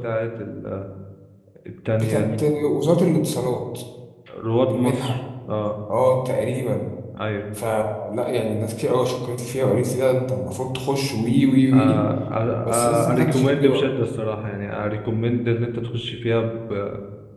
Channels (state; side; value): identical; both; correlation 1.00